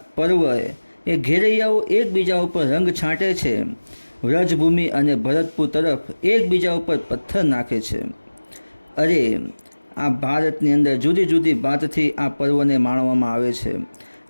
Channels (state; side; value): inverted; both; correlation -1.00